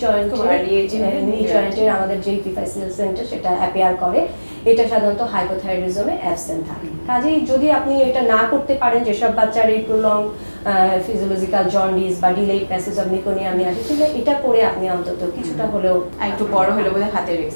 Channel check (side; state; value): both; inverted; correlation -1.00